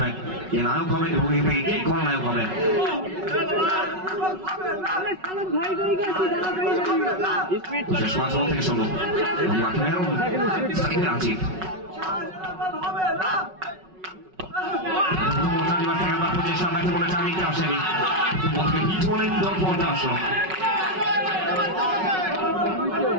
কে নায়ক হবে এবং কে খলনায়ক হবে শেষ 5 বল থেকে 16 মাঠে মেহরুন সাকিব আজিব প্রচেষ্টা ব্যাটে বলে চালিয়ে আসেনি বলকে হিট হলেন দল পর্দা আসলো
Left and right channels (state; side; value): late; left; 5.4 ms